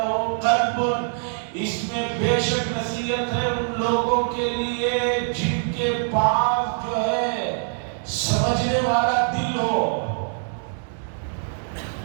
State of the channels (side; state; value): left; silent; 63 dB below the other